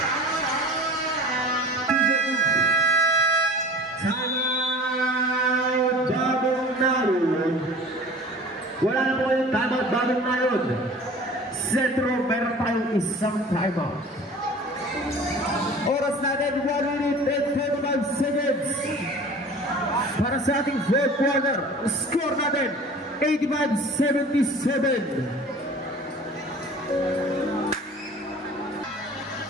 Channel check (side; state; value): both; normal; correlation 0.42